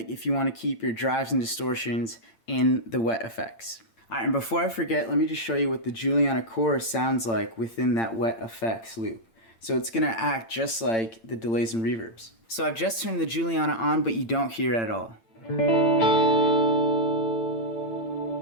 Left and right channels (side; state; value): right; late; 8.8 ms